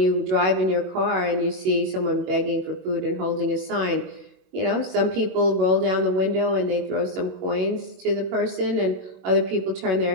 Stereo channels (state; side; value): late; left; 21 ms